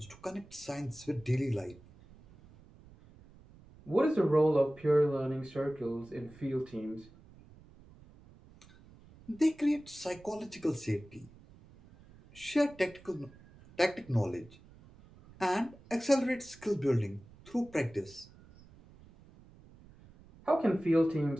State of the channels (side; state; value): right; noise; rumble, 23 dB below the sound